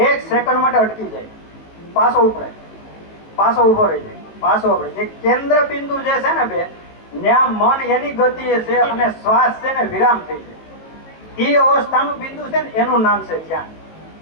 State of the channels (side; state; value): right; late; 18 ms